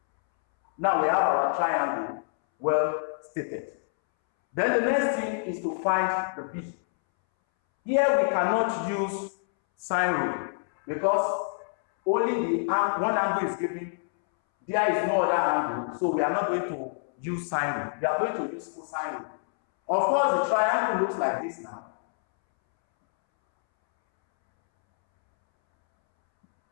Now we have our triangle well stated. Then the next thing is to find the B. Here we cannot use sine rule because only the one angle is given. There is no other angle, so we are not going to use sine rule. We are going to use cosine rule. Of course, the triangle looks like this now.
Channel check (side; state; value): right; silent; 60 dB below the other